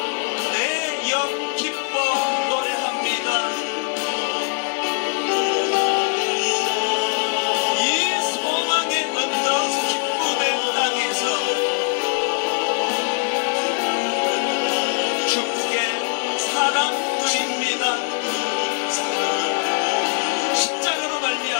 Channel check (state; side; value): quieter; right; 38.0 dB